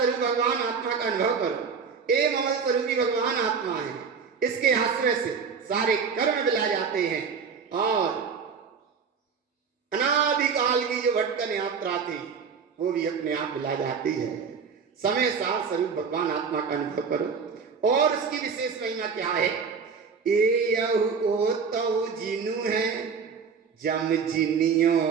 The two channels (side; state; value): left; quieter; 5.9 dB